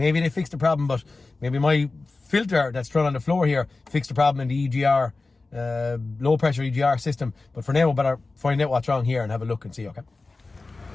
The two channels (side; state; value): right; quieter; 3.5 dB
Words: they fixed the problem, but maybe my filter that's thrown on the floor here fixed the problem in the EGR, low pressure EGR system. But for now, we better find out what's wrong here and have a look and see, okay?